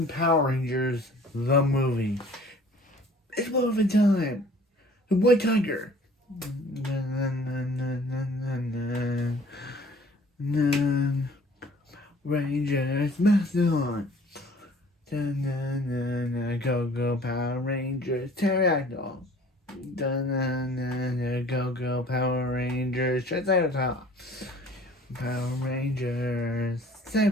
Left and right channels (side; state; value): both; normal; correlation 0.51